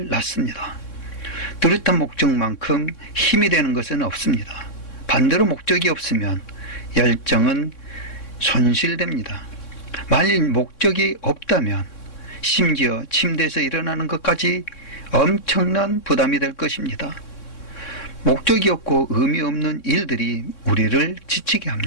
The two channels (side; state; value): right; late; 3.6 ms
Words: 낳습니다. 뚜렷한 목적만큼 힘이 되는 것은 없습니다. 반대로 목적이 없으면 열정은 손실됩니다. 만일 목적이 없다면 심지어 침대에서 일어나는 것까지 엄청난 부담이 될 것입니다. 목적이 없고 의미 없는 일들이 우리를 지치게